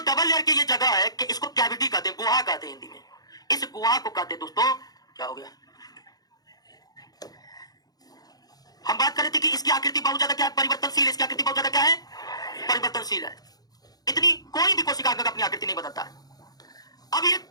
डबल लेयर की ये जगह है, कि इसको कैविटी कहते हैं, गुहा कहते हैं हिंदी में। इस गुहा को कहते हैं दोस्तों, क्या हो गया, हम बात कर रहे थे कि इसकी आकृति बहुत ज्यादा क्या है? परिवर्तनशील। इसकी आकृति बहुत ज्यादा क्या है? परिवर्तनशील है। इतनी कोई भी कोशिका अंगक अपनी आकृति नहीं बदलता है। अब ये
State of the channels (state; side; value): late; right; 0.19 ms